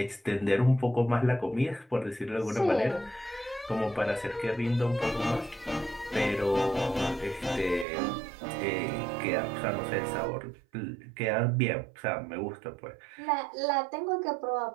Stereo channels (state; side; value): drops out; left; at 7.9 s